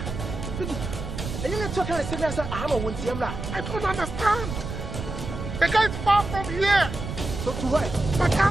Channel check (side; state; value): right; noise; rumble, 6 dB below the sound